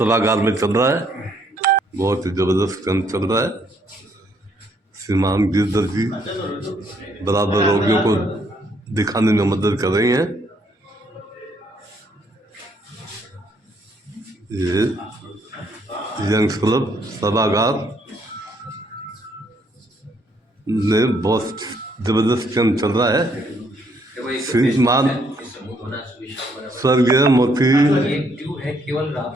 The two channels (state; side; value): normal; both; correlation 0.69